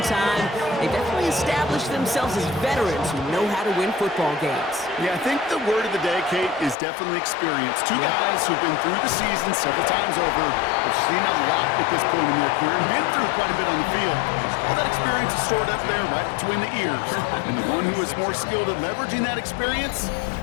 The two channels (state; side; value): drops out; right; at 6.8 s